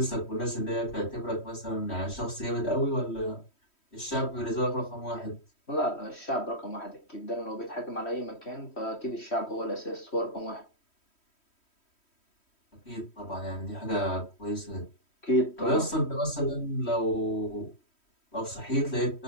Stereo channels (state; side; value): late; right; 3.1 ms